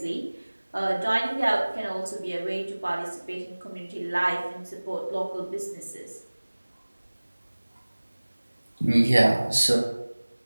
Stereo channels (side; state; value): both; inverted; correlation -1.00